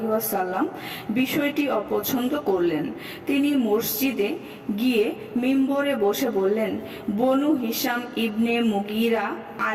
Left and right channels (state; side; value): identical; both; correlation 1.00